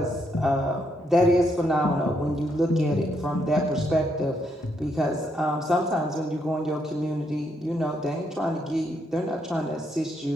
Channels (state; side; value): normal; both; correlation 0.76